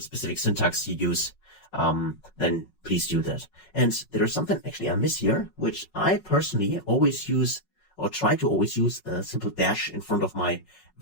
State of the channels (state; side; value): late; right; 5.4 ms